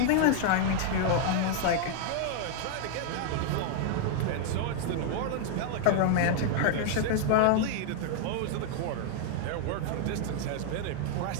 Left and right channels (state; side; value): different; both; correlation 0.00